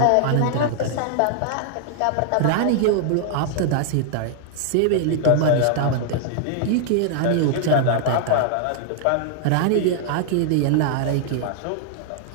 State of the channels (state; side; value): different; both; correlation -0.01